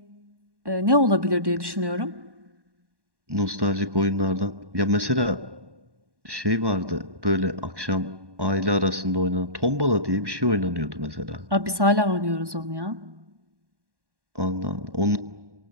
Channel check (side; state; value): left; late; 1.1 ms